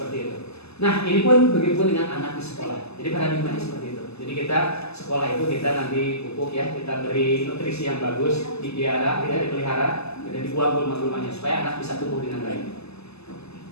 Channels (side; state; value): right; late; 0.79 ms